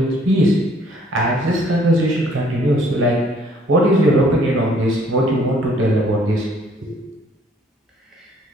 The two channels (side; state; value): both; normal; correlation 0.61